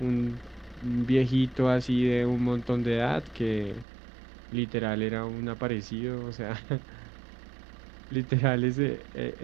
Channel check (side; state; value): left; drops out; at 3.9 s